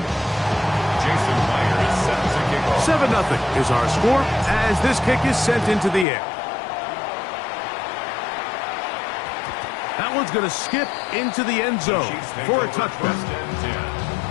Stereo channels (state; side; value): drops out; right; at 6.1 s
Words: 7-0 is our score as this kick is sent into the air. That one's going to skip into the end zone for a touchdown.